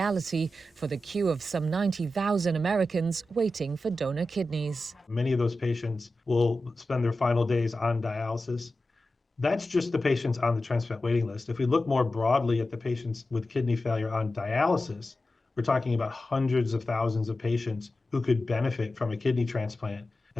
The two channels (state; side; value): normal; both; correlation 0.93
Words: for the queue of some 90,000 Americans waiting for donor kidneys. Many of those patients will spend their final days on dialysis. That's just the patients on the transplant waiting list. If we look more broadly at the patients with kidney failure on dialysis, we're talking about hundreds of thousands of patients who could benefit from a kidney transplant.